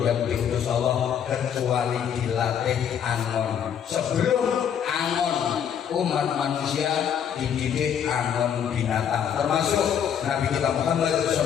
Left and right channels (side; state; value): right; quieter; 8.5 dB